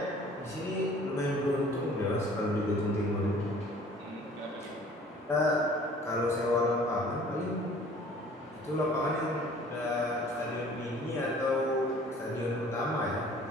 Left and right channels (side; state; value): both; normal; correlation 0.51